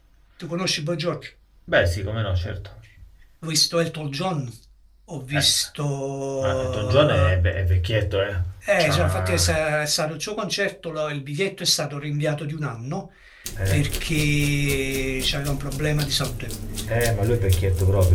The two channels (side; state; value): both; identical; correlation 1.00